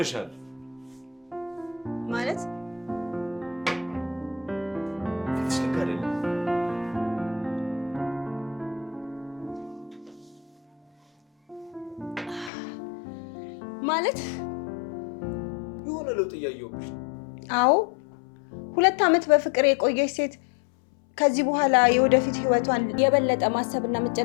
ማለት ፊትሽ ልክ አይደለም። ማለት የሆነ ለውጥ እያየሁብሽ ነው። አዎ 2 ዓመት በፍቅር የቆየች ሴት ከዚህ በኋላ የወደፊት ህይወቷን የበለጠ ማሰብና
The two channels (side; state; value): right; drops out; at 12.5 s